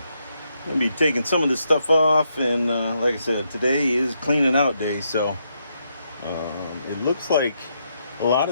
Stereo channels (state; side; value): inverted; both; correlation -0.79